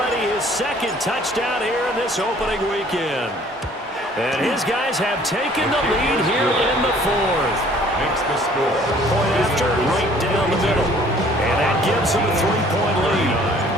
his 2nd touchdown here in this opening weekend. And his guys have taken the lead here in the 4th. Makes the score. Point after, right down the middle. And that gives him a 3-point lead.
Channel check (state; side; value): normal; both; correlation 0.55